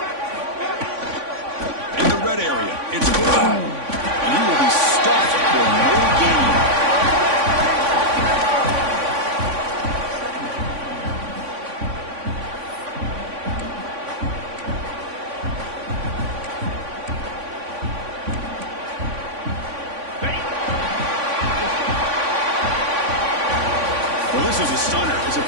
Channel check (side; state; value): left; late; 3.5 ms